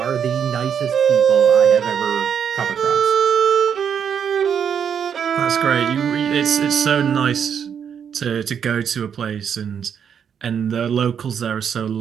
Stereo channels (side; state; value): left; quieter; 7.8 dB